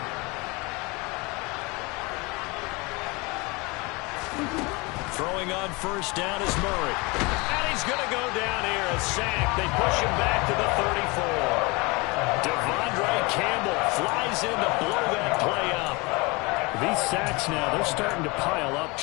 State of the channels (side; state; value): right; quieter; 26.3 dB